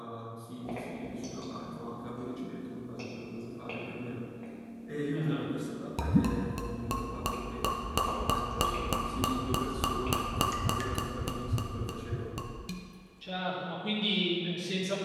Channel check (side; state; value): both; identical; correlation 1.00